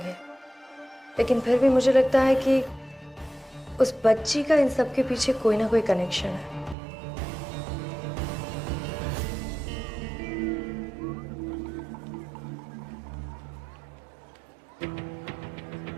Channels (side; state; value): left; drops out; at 6.8 s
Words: लेकिन फिर भी मुझे लगता है कि उस बच्ची का इन सब के पीछे कोई ना कोई कनेक्शन है।